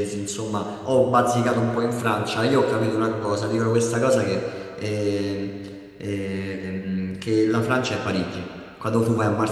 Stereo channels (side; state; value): both; identical; correlation 1.00